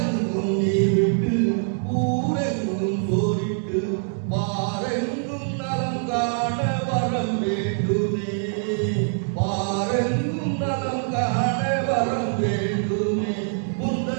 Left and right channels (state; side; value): silent; left; digital silence